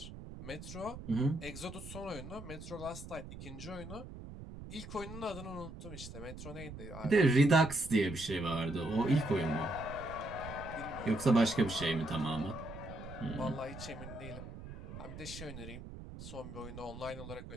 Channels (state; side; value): noise; right; rumble, 12 dB below the sound